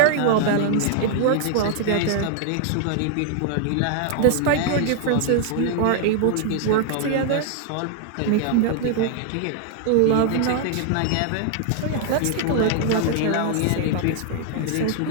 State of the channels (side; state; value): both; different; correlation 0.00